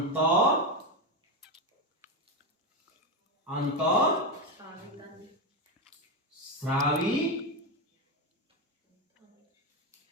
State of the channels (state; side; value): normal; both; correlation 0.11